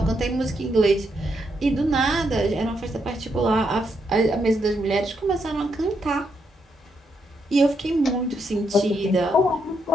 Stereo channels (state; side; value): normal; both; correlation 0.79